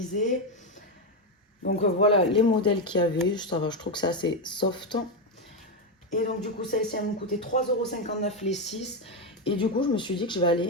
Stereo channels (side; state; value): both; normal; correlation 0.08